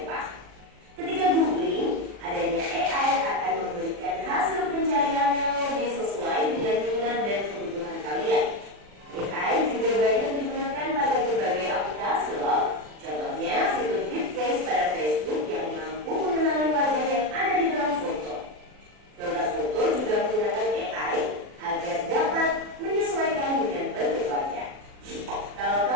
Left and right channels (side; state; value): left; late; 40 ms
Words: Ketika googling, adanya AI akan memberikan hasil pencarian yang lebih sesuai dengan minat dan kebutuhan kalian. AI juga banyak digunakan pada berbagai aplikasi loh. Contohnya fitur deepface pada Facebook yang mampu mengenali wajah yang ada di dalam foto. Filter foto juga menggunakan AI agar dapat menyesuaikan dengan bentuk wajah. Kalau